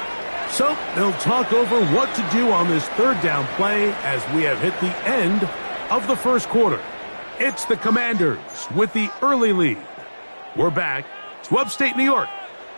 So they'll talk over what to do on this 3rd down play as we have hit the end of the first quarter. It's the Commanders with the early lead. We're back to upstate New York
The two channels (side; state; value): both; inverted; correlation -1.00